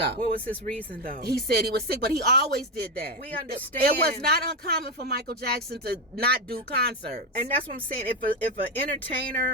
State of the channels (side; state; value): both; normal; correlation 0.11